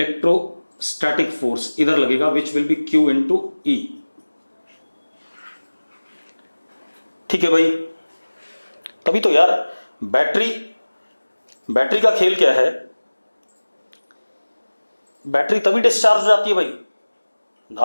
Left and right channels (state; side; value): inverted; both; correlation -1.00